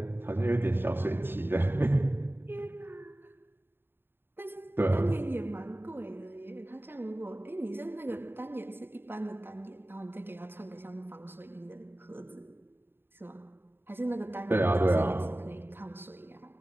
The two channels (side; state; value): left; late; 0.10 ms